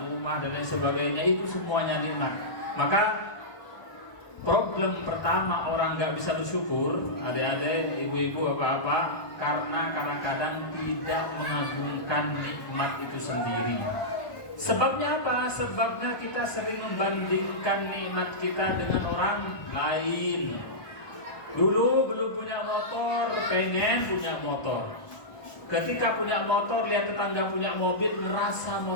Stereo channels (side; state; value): right; late; 1.2 ms